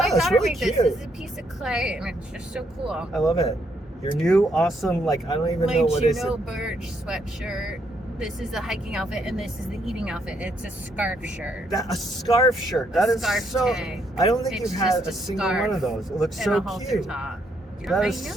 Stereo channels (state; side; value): normal; both; correlation 0.74